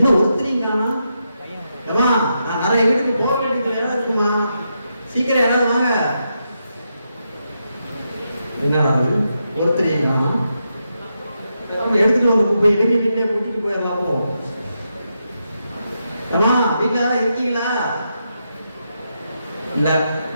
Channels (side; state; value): both; inverted; correlation -0.84